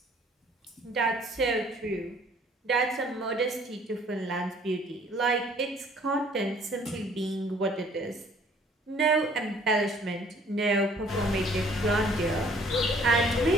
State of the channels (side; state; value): both; normal; correlation 0.58